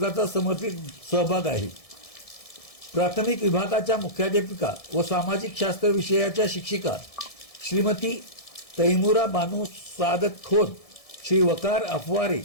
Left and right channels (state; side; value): late; right; 1.7 ms